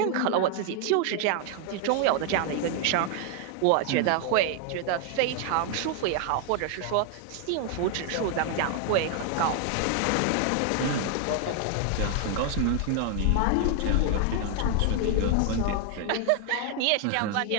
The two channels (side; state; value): both; different; correlation 0.00